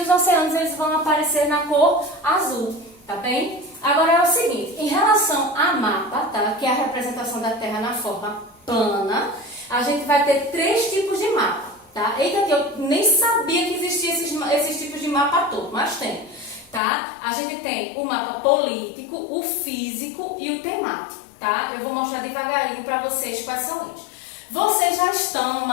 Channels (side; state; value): right; drops out; at 16.8 s